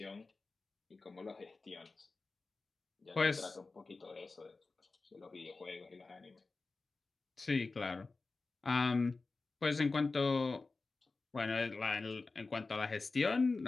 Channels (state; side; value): quieter; right; 3.8 dB